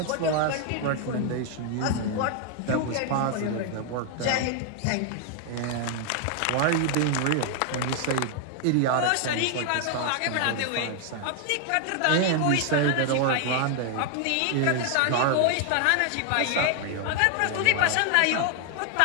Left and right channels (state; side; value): different; both; correlation 0.00